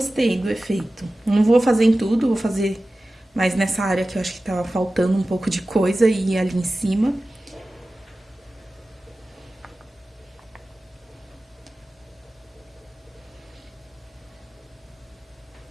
do efeito. Não vou fazer em tudo, vou fazer mais nessa área que eu acho que tava faltando um pouco de coisa e ali em cima.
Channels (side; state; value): both; normal; correlation 0.96